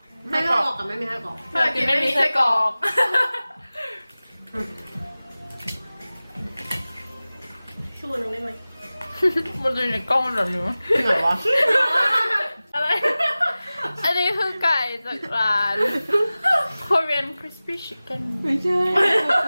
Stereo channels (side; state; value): both; inverted; correlation -0.97